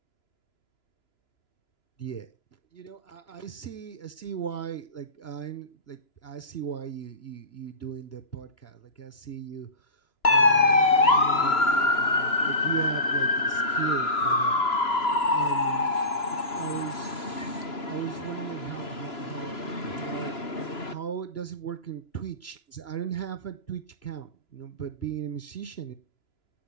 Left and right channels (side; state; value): right; late; 2.9 ms